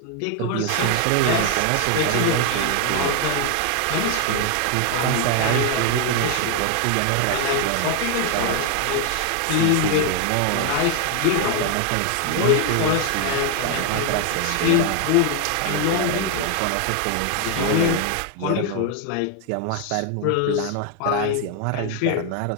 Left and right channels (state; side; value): different; both; correlation 0.01